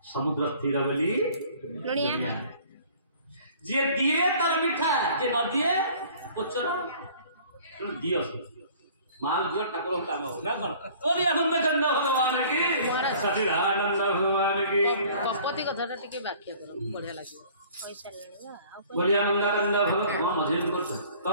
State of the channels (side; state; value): both; inverted; correlation -0.51